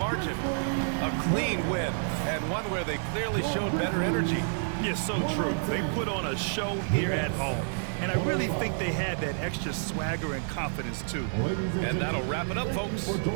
A clean win, and one where they clearly showed better energy. Yes, so true. They put on a show here at home. And I really think they had that extra swagger and confidence, too. And that'll wrap it up, folks.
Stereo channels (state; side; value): silent; left; digital silence